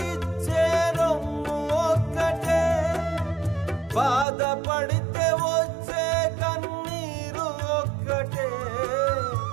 రొమ్ము ఒక్కటే బాధపడితే వచ్చే కన్నీరు ఒక్కటే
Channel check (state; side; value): drops out; left; at 4.2 s